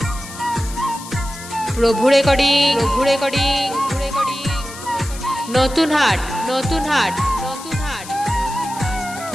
প্রভু রেকর্ডিং, প্রভু রেকর্ডিং, প্রভু রেকর্ডিং। নতুন হাট, নতুন হাট, নতুন হাট।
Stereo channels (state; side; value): noise; left; hiss, 14 dB below the sound